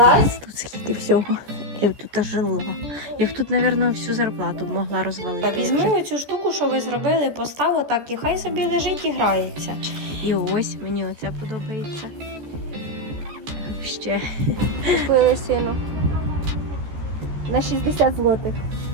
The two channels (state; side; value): late; left; 14 ms